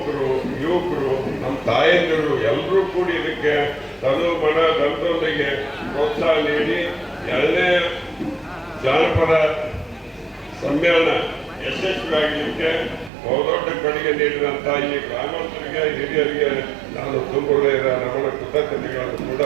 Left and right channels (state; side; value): drops out; left; at 13.1 s